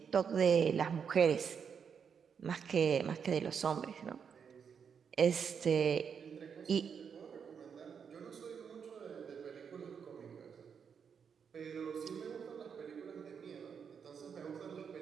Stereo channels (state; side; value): quieter; left; 6.8 dB